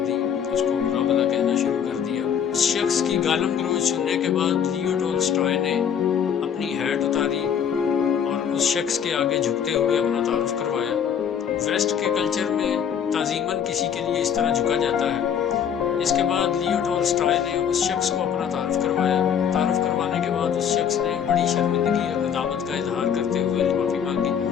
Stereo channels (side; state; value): right; quieter; 8.1 dB